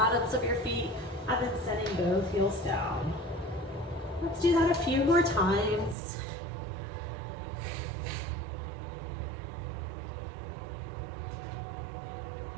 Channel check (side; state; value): left; drops out; at 6.0 s